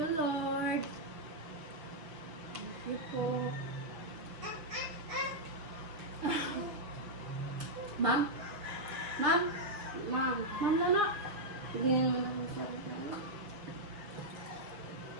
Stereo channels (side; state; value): left; late; 6.2 ms